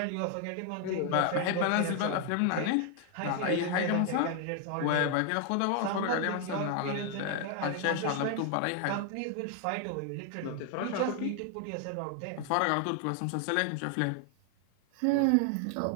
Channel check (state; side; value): different; both; correlation 0.00